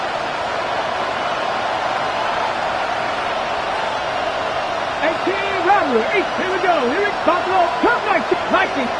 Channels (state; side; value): identical; both; correlation 1.00